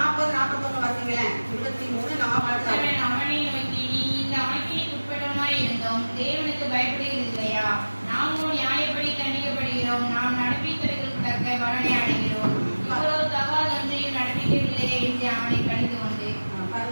41 வாசிங்களேன். 23 40. அவனை நோக்கி, நீ இந்த ஆக்கினைக்கு உட்பட்டவனாய் இருந்தோம் தேவனுக்கு பயப்படுகிறது இல்லையா? நாமோ நியாயப்படி தண்டிக்கப்படுகிறோம். நாம் நடப்பித்தவர்களுக்கு தக்க பலனை அடைகிறோம். இவ்வளவு தகாதொன்றையும் நடப்பிக்கவில்லையே என்று அவனை கடிந்து கொண்டு.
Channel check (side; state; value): both; inverted; correlation -1.00